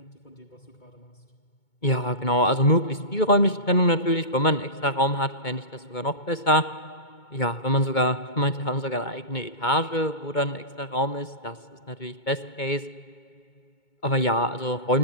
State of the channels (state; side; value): late; right; 2.2 ms